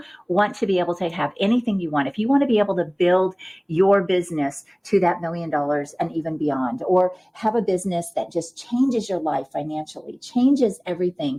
want to be able to have anything you want, if you want to be able to build your business to that $1 million and even beyond, or have a business that just changes your life financially, changes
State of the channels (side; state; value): both; identical; correlation 1.00